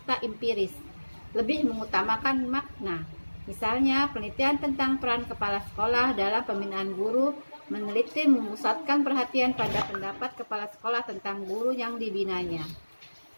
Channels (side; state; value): both; inverted; correlation -1.00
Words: empiris. Lebih mengutamakan makna. Misalnya, penelitian tentang peran kepala sekolah dalam pembinaan guru meneliti memusatkan perhatian pada pendapat kepala sekolah tentang guru yang dibinanya.